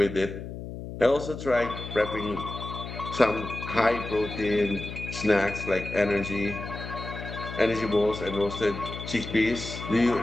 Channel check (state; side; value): noise; left; hum, 9 dB below the sound